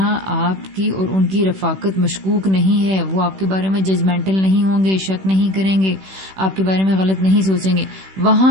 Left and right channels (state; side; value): late; left; 16 ms